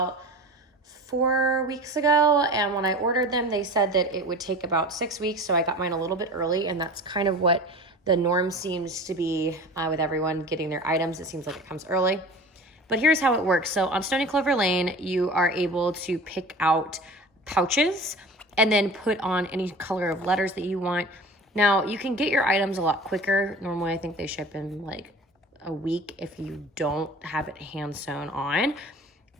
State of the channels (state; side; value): normal; both; correlation 0.38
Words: 4 weeks ago, and when I ordered them, they said that it would take about 6 weeks, so I got mine a little bit early, and that's kind of what the norm seems to be with everyone getting their items. It seems like it comes early. But here's how it works. So on Stoney Clover Lane, you are able to pick out pouches and then put on any color of letters that you want. Now, you can get your items a lot quicker. Normally, I think they ship in like a week if you don't have it hand sewn on.